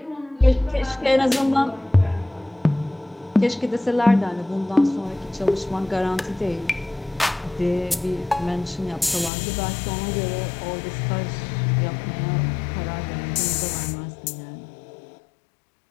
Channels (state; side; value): drops out; right; at 9.3 s